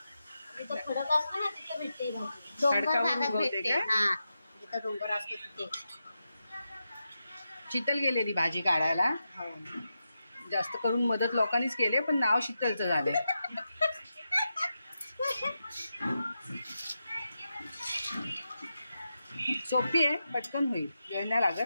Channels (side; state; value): both; inverted; correlation -0.88